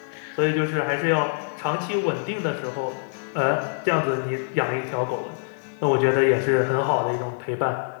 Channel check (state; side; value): silent; right; digital silence